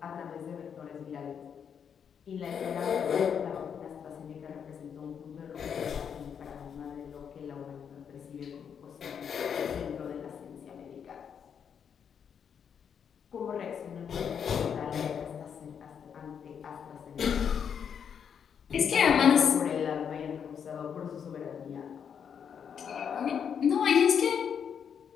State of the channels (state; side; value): quieter; right; 7.6 dB